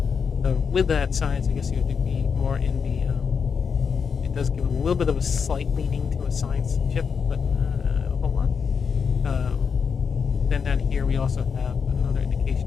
So with that science, I guess you would be more in the. It does give a little bit of a slight leaning to a science chip, but not a whole lot. Then down here we also have another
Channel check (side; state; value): right; quieter; 6.2 dB